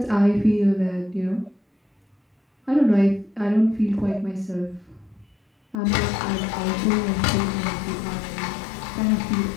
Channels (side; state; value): right; drops out; at 5.8 s